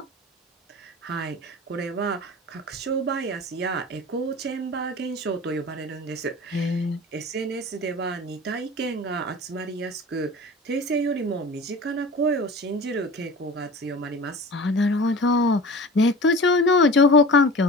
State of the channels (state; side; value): normal; both; correlation 0.38